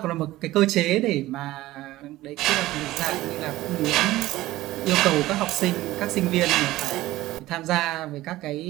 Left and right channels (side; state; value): left; quieter; 16.7 dB